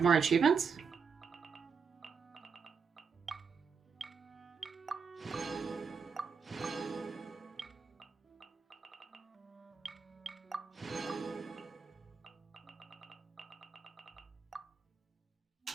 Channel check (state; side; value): quieter; left; 5.8 dB